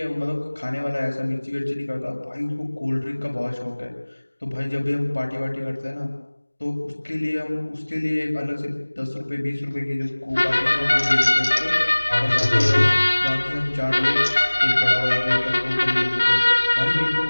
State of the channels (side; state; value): both; inverted; correlation -1.00